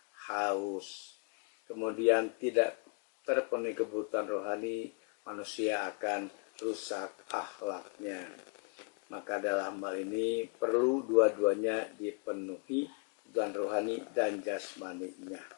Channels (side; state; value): right; quieter; 34.7 dB